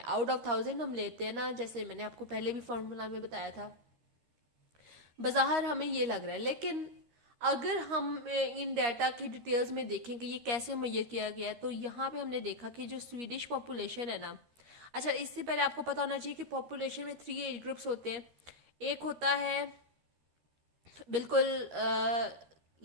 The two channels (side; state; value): left; late; 13 ms